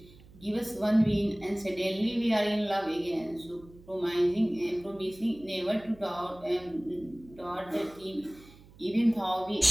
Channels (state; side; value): noise; right; hum, 23 dB below the sound